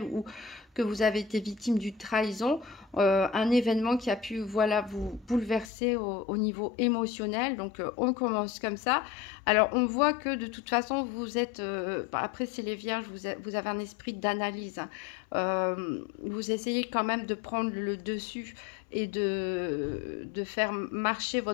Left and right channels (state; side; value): drops out; right; at 5.7 s